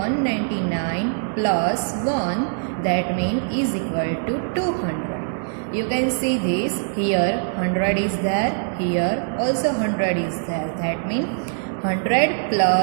plus 1, that means is equal to 200. You can see this here 100 is there, here also 100 is there. That means 100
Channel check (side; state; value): left; silent; 64 dB below the other